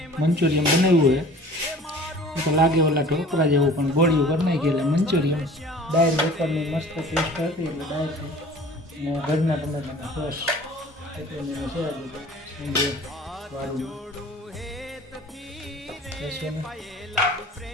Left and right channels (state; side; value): normal; both; correlation 0.46